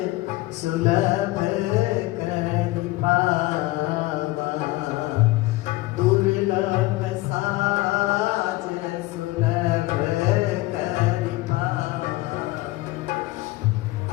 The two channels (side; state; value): right; quieter; 19.2 dB